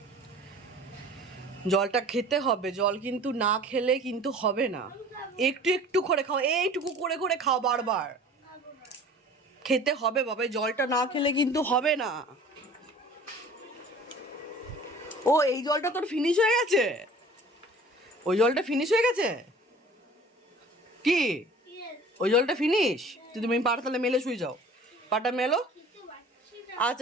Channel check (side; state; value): both; normal; correlation 0.46